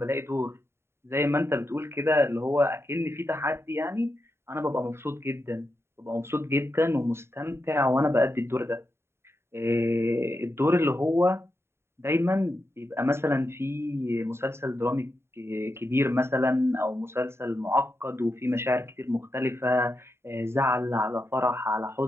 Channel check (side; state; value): left; late; 0.12 ms